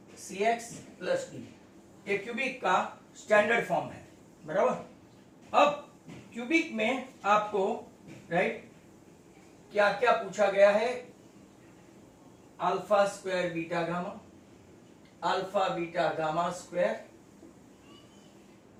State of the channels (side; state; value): both; identical; correlation 1.00